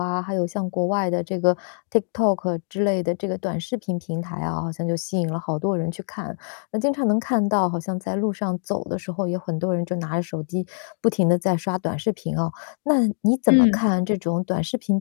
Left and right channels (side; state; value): right; silent; digital silence